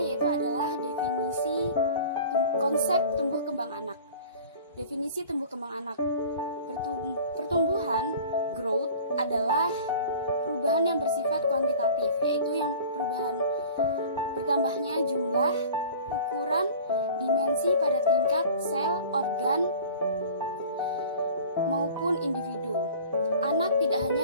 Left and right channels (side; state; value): both; inverted; correlation -0.42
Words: yaitu adalah definisi konsep tumbuh kembang anak. Definisi tumbuh kembang anak. Pertumbuhan growth adalah perubahan yang bersifat kuantitatif, yaitu yang perubahan bertambahnya jumlah, ukuran, dimensi pada tingkat sel, organ, maupun individu. Anak tidak